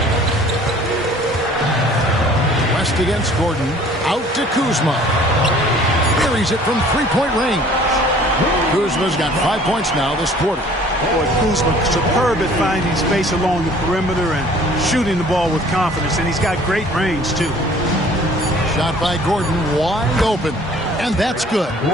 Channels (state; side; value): normal; both; correlation 0.52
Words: West against Gordon. Out to Kuzma. Carries it from three-point range. Kuzma's got 5 points now this quarter. Boy, Kuzma superb at finding space along the perimeter and shooting the ball with confidence, and he's got great range, too. Shot by Gordon, wide open. And that's good.